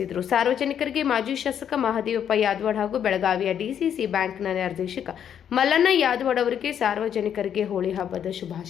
ಸಾರ್ವಜನಿಕರಿಗೆ ಮಾಜಿ ಶಾಸಕ ಮಹದೇವಪ್ಪ ಯಾದವಾಡ್ ಹಾಗೂ ಬೆಳಗಾವಿಯ ಡಿಸಿಸಿ ಬ್ಯಾಂಕ್ನ ನಿರ್ದೇಶಕ ಮಲ್ಲಣ್ಣ ಯಾದವಾಡ್ ಅವರಿಗೆ ಸಾರ್ವಜನಿಕರಿಗೆ ಹೋಳಿ ಹಬ್ಬದ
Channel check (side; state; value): right; quieter; 9.0 dB